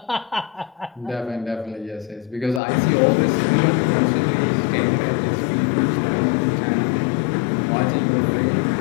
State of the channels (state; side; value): drops out; right; at 2.6 s